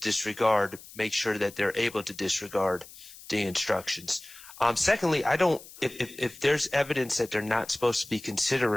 make sure that they're able to disregard the instructions. Secondly, if there's evidence that they're not supposed to be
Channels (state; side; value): noise; left; hiss, 18 dB below the sound